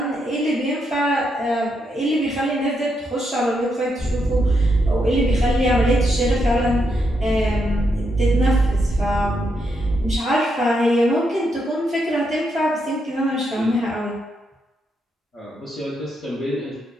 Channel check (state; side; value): normal; both; correlation 0.81